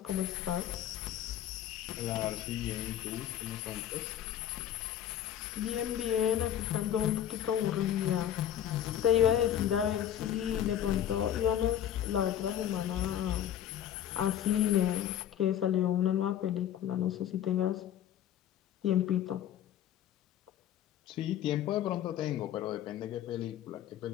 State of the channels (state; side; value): quieter; right; 10.6 dB